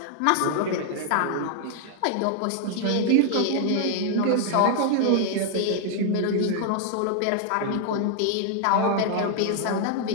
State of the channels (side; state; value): both; different; correlation 0.00